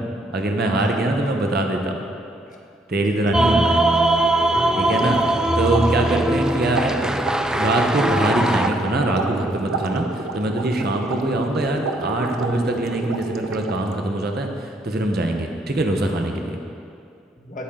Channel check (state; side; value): normal; both; correlation 0.70